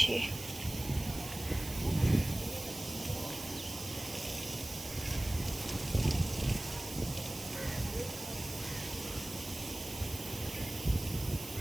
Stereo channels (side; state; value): right; noise; hiss, 11 dB below the sound